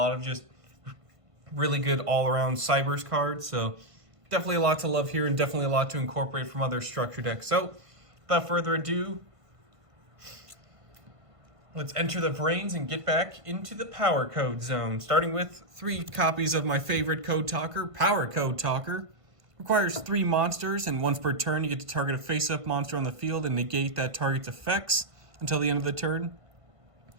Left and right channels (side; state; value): left; late; 1.5 ms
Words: of just really good all-around Cyberse cards. So definitely a lot to love here and definitely a lot to incorporate from other structure decks. So without further ado, let's enter the brains and get back into the power code zone. Starting with 3 copies of my favorite code talker, Powercode Talker. Requires 3 monsters, and once per turn you get to target a face-up monster on the field and negate that target's effects until the end of the turn.